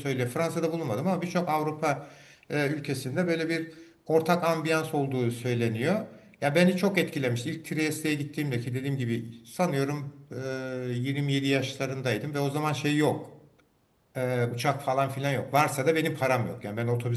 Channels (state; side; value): identical; both; correlation 1.00